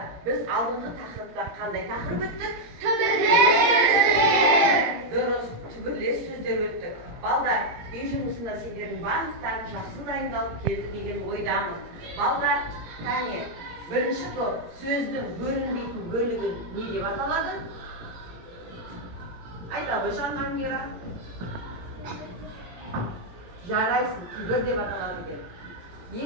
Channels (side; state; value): left; late; 17 ms